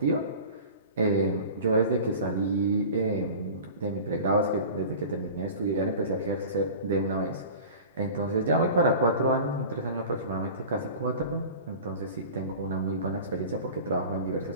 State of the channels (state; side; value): inverted; both; correlation -0.38